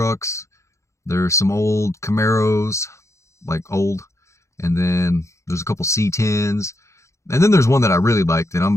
There's some old Camaros, like old, and then there's a couple C10s. And then there's one that I really liked, and I'm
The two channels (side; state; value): right; late; 0.14 ms